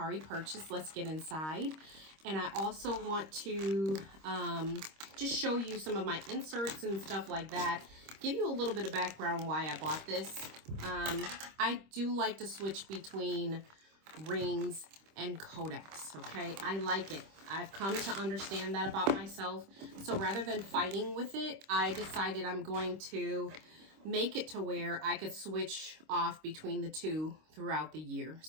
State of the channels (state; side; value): late; left; 26 ms